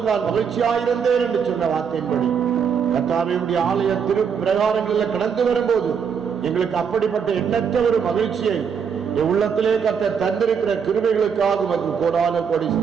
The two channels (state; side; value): quieter; left; 6.8 dB